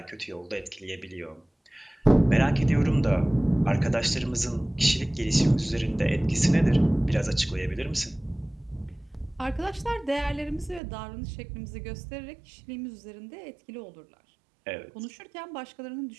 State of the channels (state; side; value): drops out; left; at 10.8 s